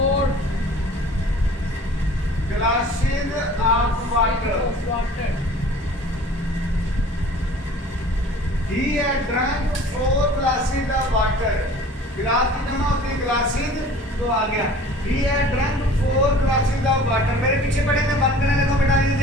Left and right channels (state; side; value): normal; both; correlation 0.47